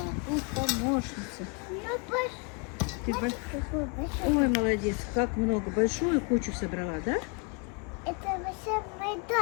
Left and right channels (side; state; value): right; quieter; 33.5 dB